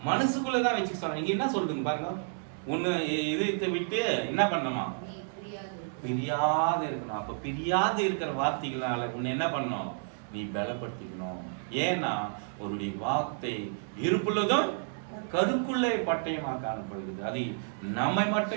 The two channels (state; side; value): silent; left; digital silence